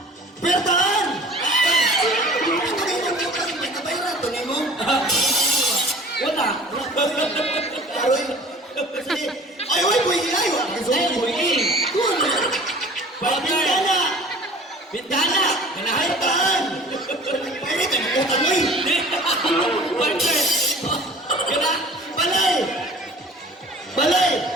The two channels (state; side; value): normal; both; correlation 0.45